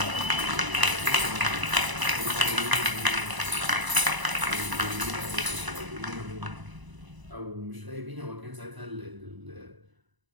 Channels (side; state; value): left; late; 1.0 ms